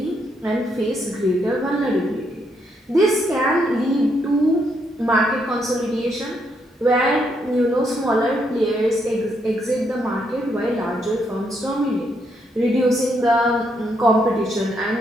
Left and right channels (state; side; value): normal; both; correlation 0.76